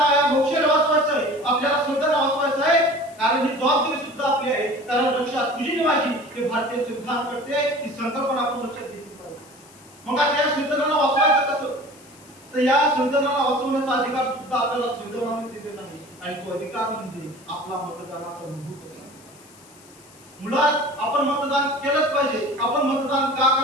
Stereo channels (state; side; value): noise; left; hiss, 25 dB below the sound